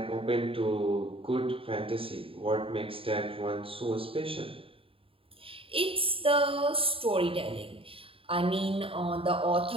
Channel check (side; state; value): left; late; 0.27 ms